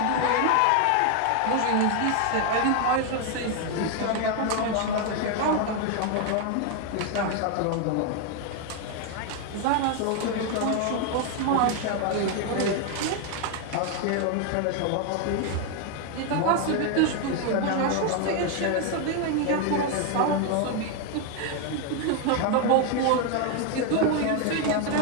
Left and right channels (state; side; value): different; both; correlation 0.01